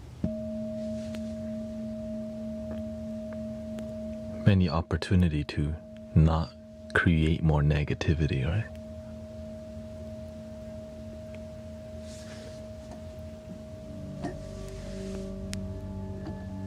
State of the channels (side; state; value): both; identical; correlation 1.00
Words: many opportunity to not create more negativity, right?